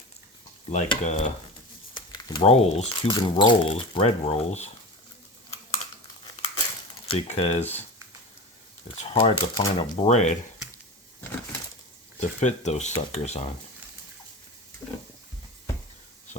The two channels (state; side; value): normal; both; correlation 0.29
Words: Like rolls, Cuban rolls, bread rolls. Because it's hard to find a bread to fit those suckers on.